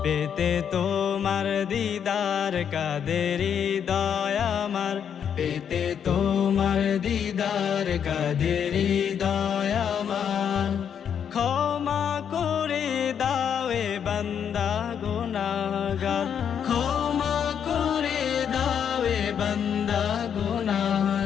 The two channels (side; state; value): right; quieter; 8.2 dB